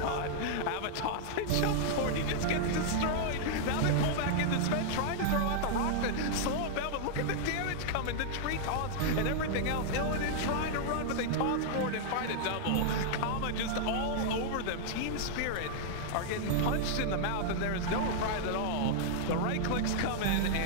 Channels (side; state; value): both; different; correlation -0.01